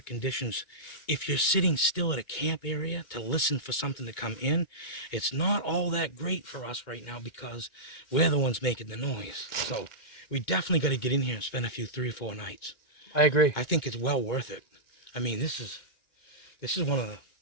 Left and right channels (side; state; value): right; late; 2.2 ms